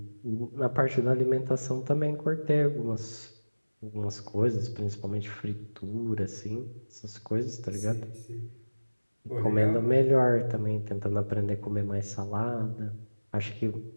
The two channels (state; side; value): inverted; both; correlation -1.00